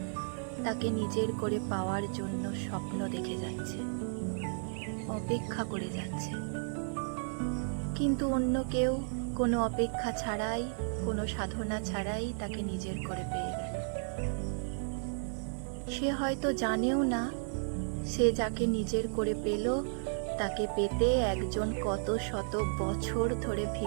তাকে নিজের করে পাওয়ার জন্য স্বপ্ন দেখে যাচ্ছে, অপেক্ষা করে যাচ্ছে। কিন্তু অন্য কেউ কোনো অপেক্ষা ছাড়াই, কোনো সাধনা ছাড়াই তাকে নিজের করে পেয়ে গেল। সে হয়তো জানেও না সে যাকে নিজের করে পেল তাকে পেতে একজন কত শত বছর ধরে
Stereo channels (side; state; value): left; silent; digital silence